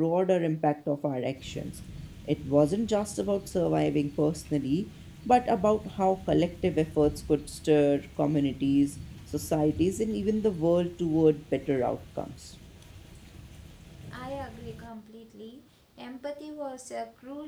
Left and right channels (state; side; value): identical; both; correlation 1.00